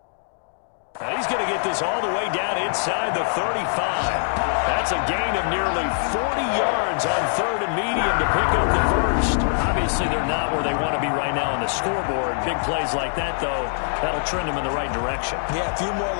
And he's going to get this all the way down inside the 35. That's a gain of nearly 40 yards on 3rd and medium to pick up the first. Obviously, they're not where they want to be right now on the scoreboard. Big plays like that, though, that'll trend them in the right direction. Yeah, a few more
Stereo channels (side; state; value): right; silent; digital silence